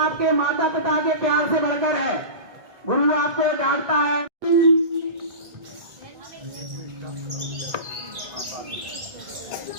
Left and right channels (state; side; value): late; left; 2.0 ms